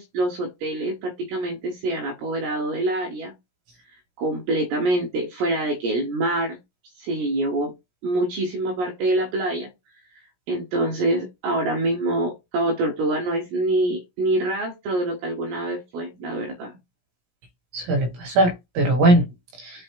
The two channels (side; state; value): left; late; 17 ms